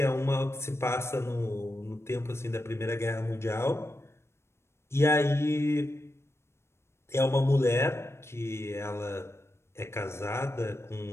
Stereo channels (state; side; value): late; right; 0.13 ms